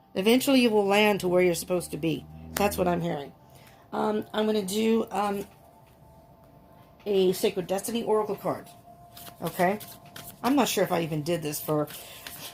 Eventually you will land to where you're supposed to be. That's what I'm hearing. I'm going to do a Sacred Destiny Oracle card. Okay? I'm not sure if I even did this for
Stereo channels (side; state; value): both; identical; correlation 1.00